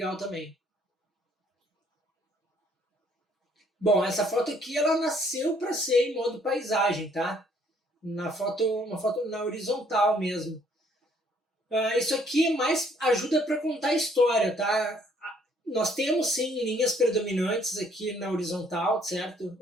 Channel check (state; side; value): normal; both; correlation 0.64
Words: também. Bom, essa foto aqui, ela nasceu para ser em modo paisagem, tá? Uma foto na horizontal mesmo. Isso aqui mais ajuda para contar a história, tá? Nós temos sim linhas predominantes aqui na horizontal, certo?